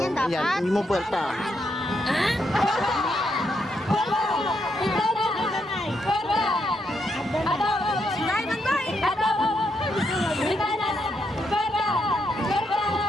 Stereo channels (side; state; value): both; normal; correlation 0.79